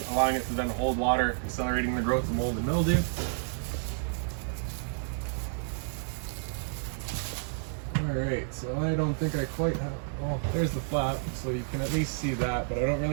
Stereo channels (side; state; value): left; silent; digital silence